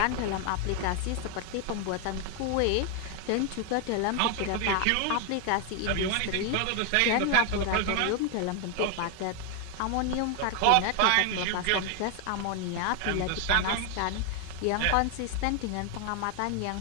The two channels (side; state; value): both; different; correlation 0.01